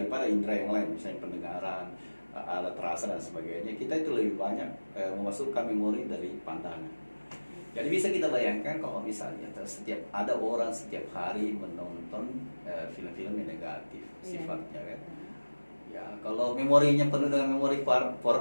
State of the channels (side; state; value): both; inverted; correlation -1.00